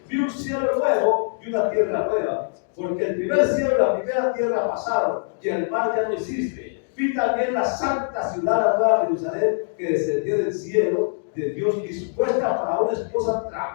vi un cielo nuevo y una tierra nueva, porque el primer cielo y la primera tierra pasaron, y el mar ya no existe. Vi también la santa ciudad, la nueva Jerusalén, que descendió del cielo de Dios, dispuesta para una esposa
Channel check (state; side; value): silent; right; digital silence